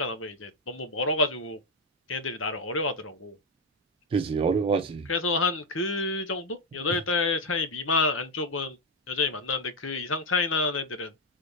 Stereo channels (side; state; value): both; normal; correlation 0.05